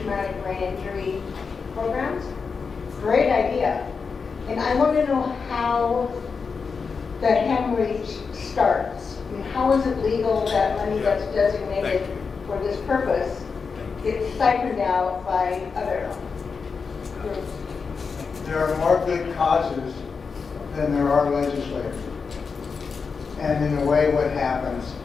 brain injury programs. Great idea. And I want to know how the hemorrhage starts. I mean, how is it legal that money that's designated for this purpose gets siphoned out by other groups? There are more good causes than there are legislators. And in a way, what happens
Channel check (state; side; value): quieter; right; 5.2 dB